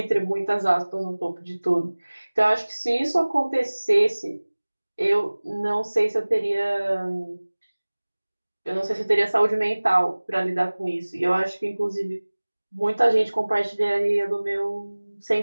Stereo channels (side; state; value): both; inverted; correlation -1.00